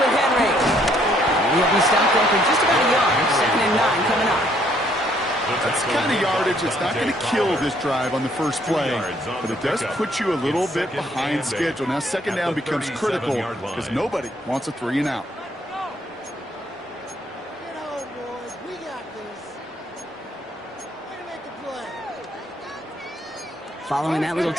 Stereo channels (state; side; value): normal; both; correlation 0.67